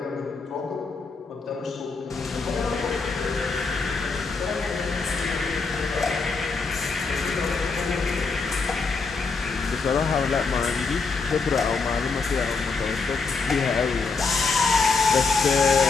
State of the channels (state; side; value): quieter; right; 4.5 dB